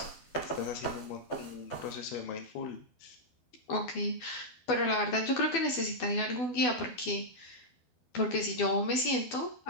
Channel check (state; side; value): late; right; 12 ms